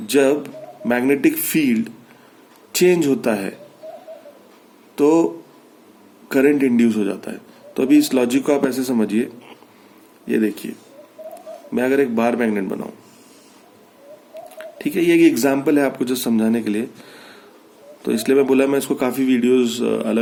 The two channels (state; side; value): identical; both; correlation 1.00